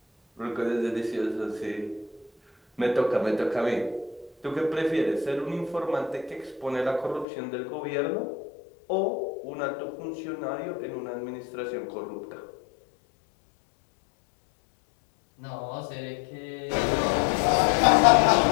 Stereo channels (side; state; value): right; drops out; at 7.2 s